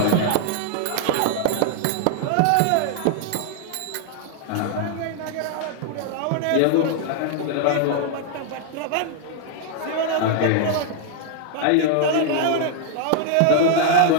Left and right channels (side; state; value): both; different; correlation 0.00